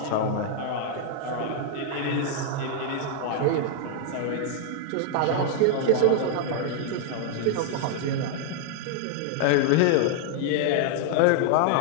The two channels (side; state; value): both; different; correlation 0.00